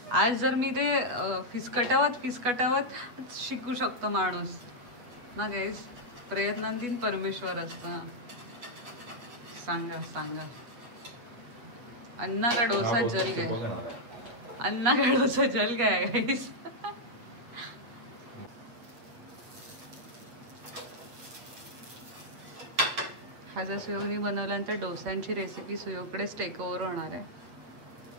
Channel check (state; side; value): late; left; 8.1 ms